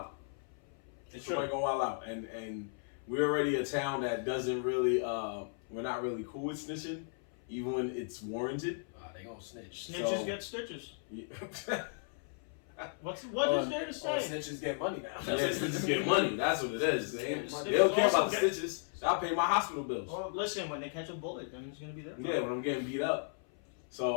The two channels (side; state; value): right; silent; 54 dB below the other